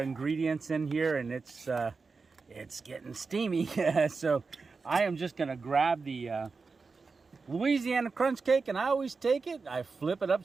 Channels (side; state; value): left; quieter; 4.5 dB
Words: ingredients in here, and it's getting steamy. So I am just going to grab the Louisiana crunch cake, and I always take it, I flip it